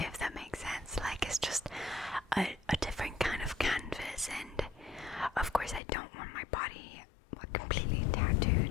that makes sense. Like, it's just a different kind of canvas, and of course I don't want my body completely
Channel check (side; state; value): right; drops out; at 5.8 s